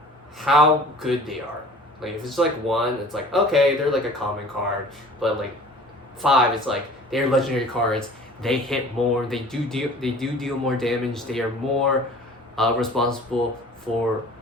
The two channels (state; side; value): normal; both; correlation 0.46